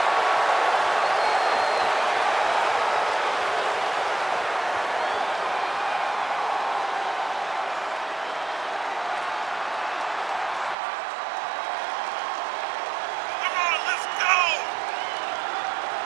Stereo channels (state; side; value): drops out; left; at 10.8 s